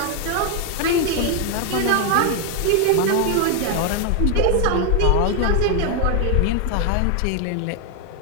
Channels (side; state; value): both; different; correlation 0.01